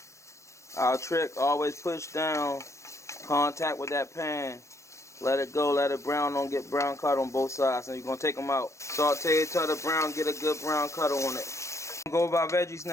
trick, always push down, contact with that pan. Let it go, let it brown, don't get brown cut on both sides. And you're going to take them out. Saute it till the brown, get a good brown cut on it. Go over our veggies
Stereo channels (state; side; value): late; right; 0.14 ms